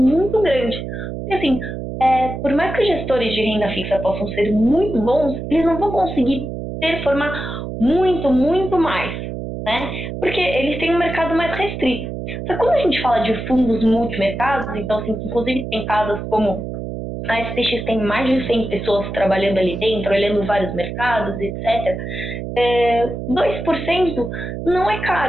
grande. Porque, assim, por mais que os gestores de renda fixa possam ser muito bons, eles não vão conseguir performar muito, muito mais, né? Porque eles têm um mercado mais restrito. Só que quando a gente fala de fundos multimercados, então, assim, inclusive tem casas como a SPX tem mais de 100 pessoas trabalhando ali dentro, olhando vários mercados, etc. 2% não é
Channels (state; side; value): noise; right; hum, 6 dB below the sound